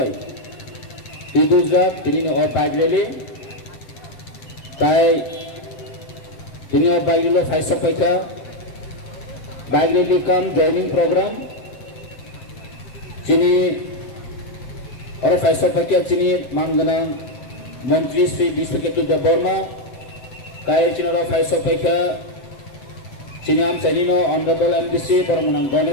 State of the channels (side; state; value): right; late; 7.8 ms